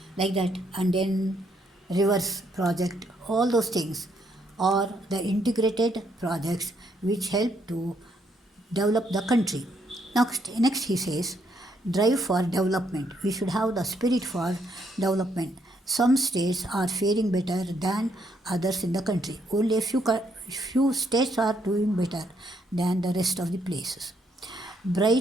Like that, and then rivers project, all those things. or the integrated projects which help to develop the country. Next he says, drive for development. We should have the spirit for development. Some states are faring better than others in the country. Only a few states are doing better than the rest of the places.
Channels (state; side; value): normal; both; correlation 0.73